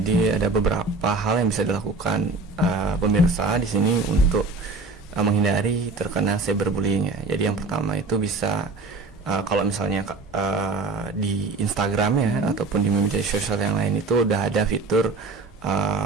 ada beberapa hal yang bisa dilakukan pemirsa di sini untuk menghindari terkena cyberbullying ya. Jadi yang pertama itu bisa kalau misalnya di Instagram ya ataupun di media sosial yang lain itu udah ada fitur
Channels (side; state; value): left; quieter; 3.5 dB